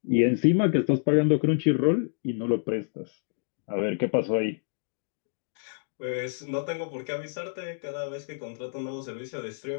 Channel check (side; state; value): right; silent; digital silence